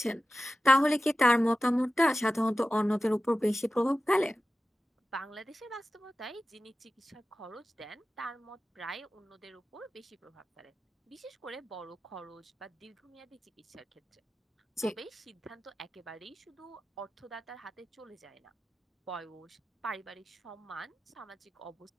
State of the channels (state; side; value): normal; both; correlation 0.95